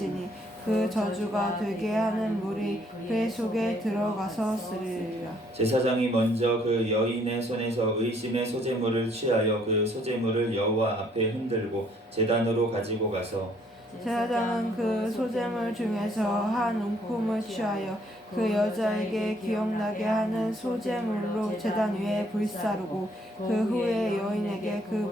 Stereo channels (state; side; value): normal; both; correlation 0.65